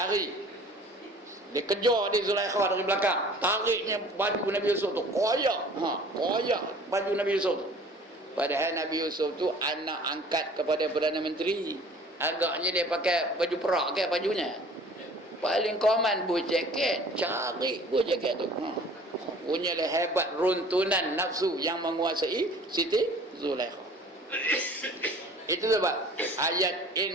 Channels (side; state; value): both; normal; correlation 0.49